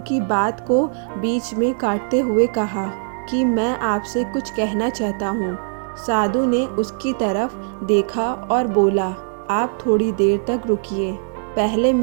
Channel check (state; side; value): silent; left; digital silence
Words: बात को बीच में काटते हुए कहा कि मैं आपसे कुछ कहना चाहता हूँ। साधु ने उसकी तरफ देखा और बोला, आप थोड़ी देर तक रुकिए, पहले